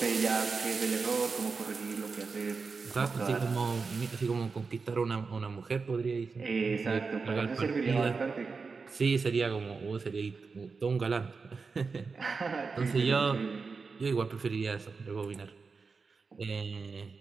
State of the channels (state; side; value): quieter; left; 4.7 dB